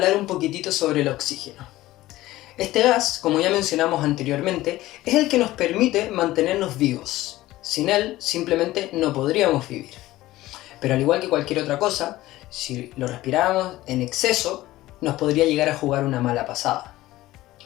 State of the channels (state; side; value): quieter; right; 16.7 dB